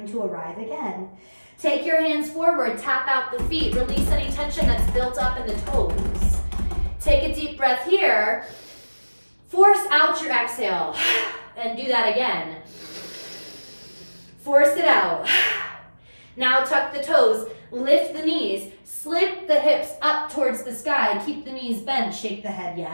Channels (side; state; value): both; inverted; correlation -1.00